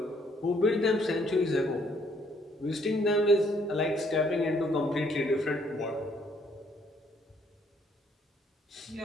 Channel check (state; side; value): normal; both; correlation 0.66